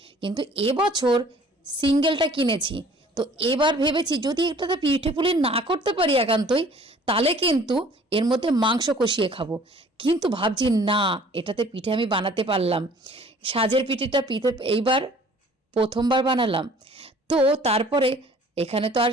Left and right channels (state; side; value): normal; both; correlation 0.53